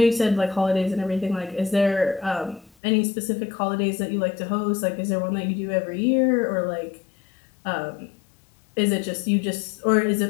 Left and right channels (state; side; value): drops out; right; at 2.7 s